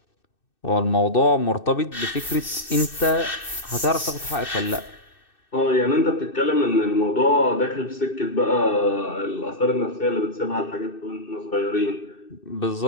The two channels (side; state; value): right; late; 2.6 ms